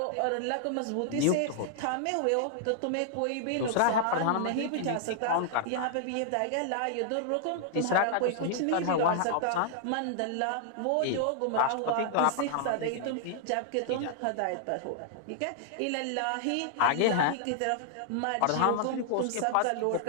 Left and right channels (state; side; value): different; both; correlation -0.01